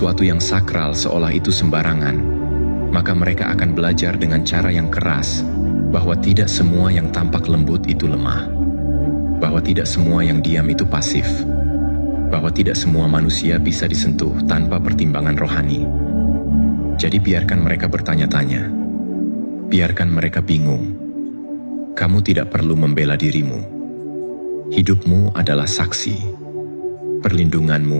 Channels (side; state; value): both; inverted; correlation -1.00